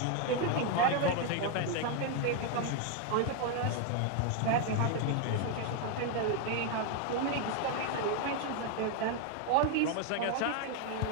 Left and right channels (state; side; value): different; both; correlation 0.01